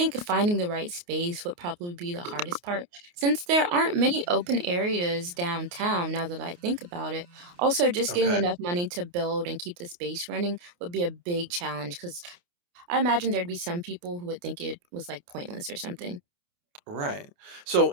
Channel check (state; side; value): late; left; 29 ms